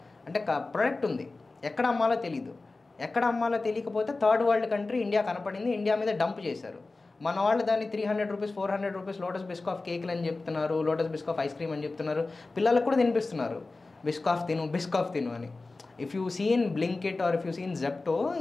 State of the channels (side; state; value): right; quieter; 3.5 dB